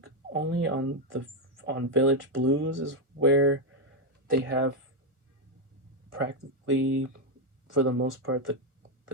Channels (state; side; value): late; left; 1.3 ms